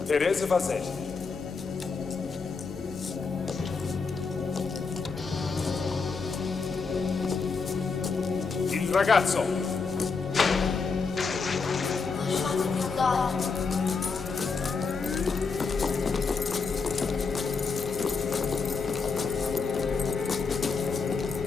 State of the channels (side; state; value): right; quieter; 4.8 dB